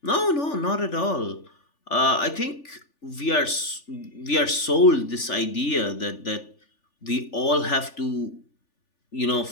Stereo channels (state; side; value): late; right; 3.4 ms